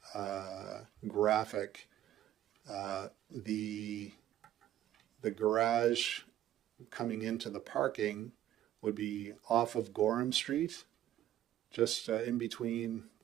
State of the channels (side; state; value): left; quieter; 12.5 dB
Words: graphic, the garage coming into the parking would be off of Gorham Street, just in between